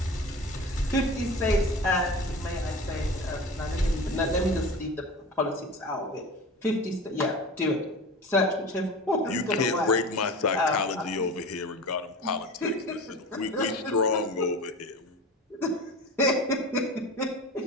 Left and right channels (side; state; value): both; normal; correlation 0.33